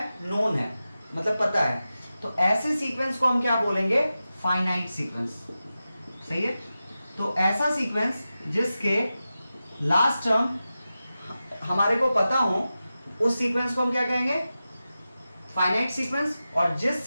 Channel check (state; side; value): inverted; both; correlation -0.93